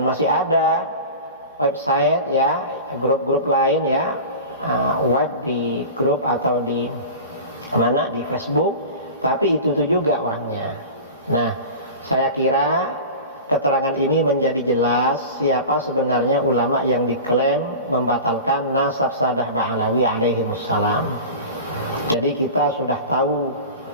masih ada website ya, grup-grup lain ya, web di grup atau di mana, di Facebook, tapi itu juga orangnya. Nah, saya kira keterangan ini menjadi jelas siapa sebenarnya ulama yang diklaim membatalkan nasab Sadah Ba'alawi alaihimussalam. Jadi kita sudah tahu,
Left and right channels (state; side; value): inverted; both; correlation -0.33